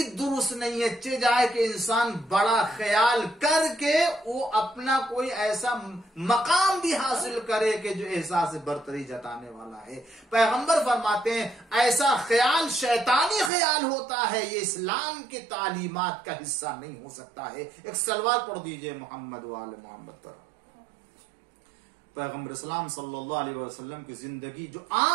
درست نہیں ہے۔ چہ جائے کہ انسان بڑا خیال کر کے وہ اپنا کوئی ایسا مقام بھی حاصل کرے کہ جو احساس برتری جتانے والا ہے۔ پیغمبر فرماتے ہیں ایسا خیال شیطانی خیال ہوتا ہے، یہ اسلام کی تعلیمات کا حصہ نہیں ہو سکتا ہے۔ ایک سلوات پڑھ دیجئے محمد وآل محمد پر۔ پیغمبر اسلام صلی اللہ علیہ وسلم کی زندگی، جو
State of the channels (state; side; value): drops out; left; at 13.5 s